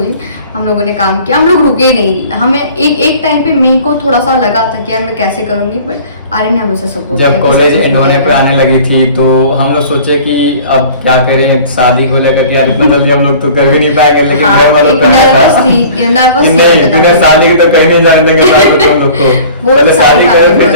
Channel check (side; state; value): both; inverted; correlation -0.46